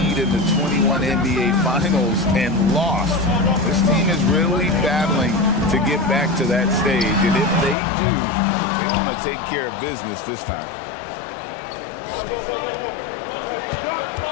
in the 21 NBA Finals and lost. This team is really battling to get back to that stage, and if they do, they want to take care of business this time.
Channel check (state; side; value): drops out; right; at 7.8 s